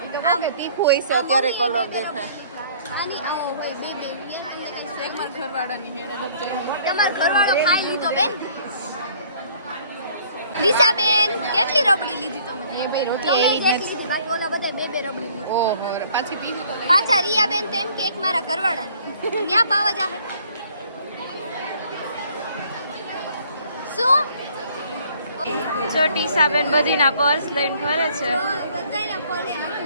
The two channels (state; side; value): inverted; both; correlation -0.58